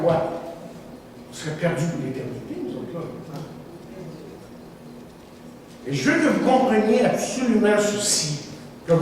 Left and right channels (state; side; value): identical; both; correlation 1.00